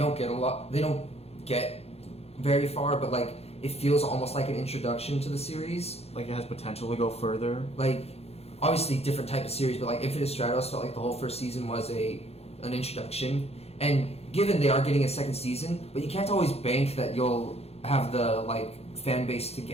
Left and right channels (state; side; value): late; right; 0.30 ms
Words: get very far, but like it feels almost like an introduction to the series. Like it has potential to go further. Like obviously different type of series, but like Infinite Stratos felt like the whole first season was an introduction. And given they are getting a second season, but you can't always bank that you'll have the like fan base to